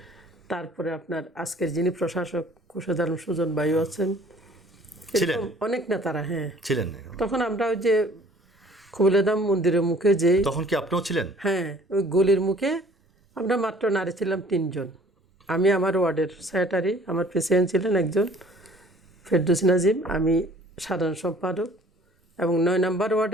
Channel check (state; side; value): normal; both; correlation 0.54